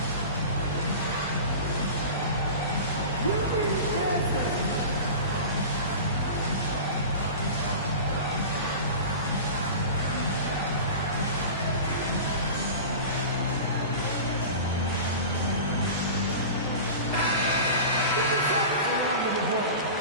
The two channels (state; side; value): inverted; both; correlation -0.33